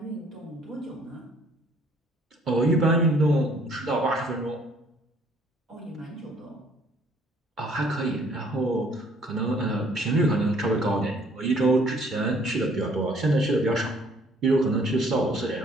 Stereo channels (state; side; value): normal; both; correlation 0.60